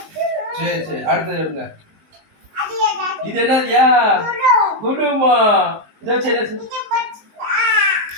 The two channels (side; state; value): left; late; 19 ms